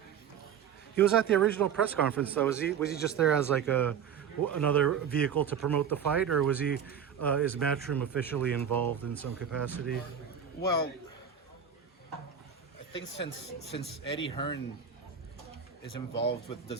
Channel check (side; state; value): left; quieter; 7.8 dB